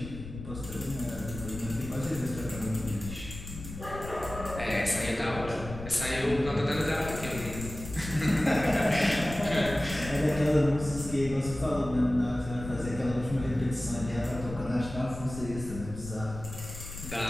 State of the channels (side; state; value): left; noise; rumble, 10 dB below the sound